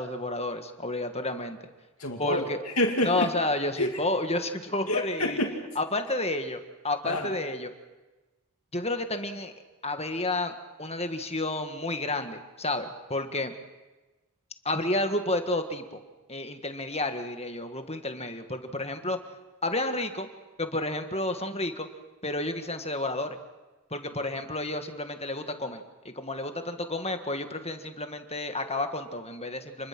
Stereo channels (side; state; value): both; normal; correlation 0.08